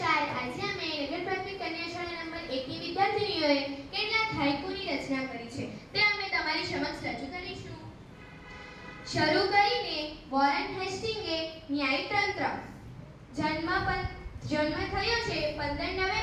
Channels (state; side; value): identical; both; correlation 1.00